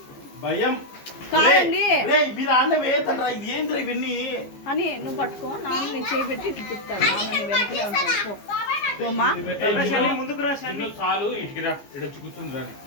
భయం కాదండి మీరు ఆన్న వేయతండ్రా ఇది ఏంద్రా ఇవన్నీ అని నువ్వు పట్టుకో, నాన్న నీ చేయి పెట్టి ఇటు తిప్పుతాడు, నాన్న నీ వెనకలే ఉంటాడు. పోమా ఏ శాంతి ముందుకు రా శాంతి. చాలు ఇటుకి రా ఇక్కడ వచ్చి కూర్చుంది రా.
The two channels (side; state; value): right; late; 15 ms